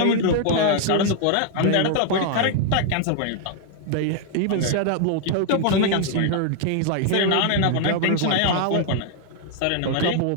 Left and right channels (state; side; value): different; both; correlation 0.00